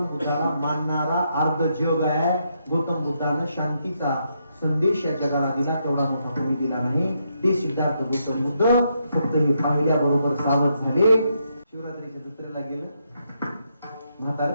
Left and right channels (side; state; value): both; inverted; correlation -0.79